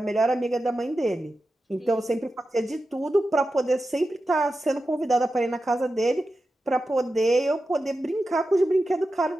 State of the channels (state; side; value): normal; both; correlation 0.91